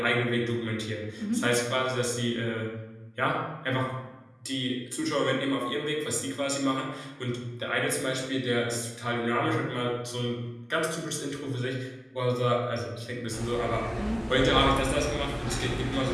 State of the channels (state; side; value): identical; both; correlation 1.00